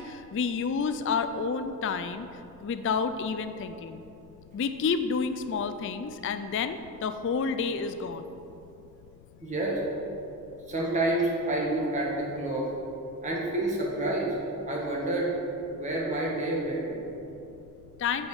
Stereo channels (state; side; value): noise; left; rumble, 23 dB below the sound